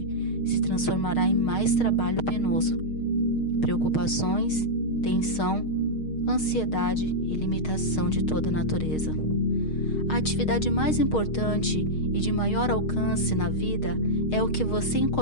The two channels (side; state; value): right; late; 6.4 ms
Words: se transformará em mais trabalho penoso, preocupações, tensão, ansiedade e limitação de toda a natureza. A atividade mais importante e de maior alcance na vida é o que você